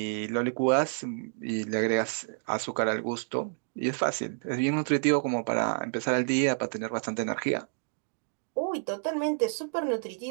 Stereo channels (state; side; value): silent; left; digital silence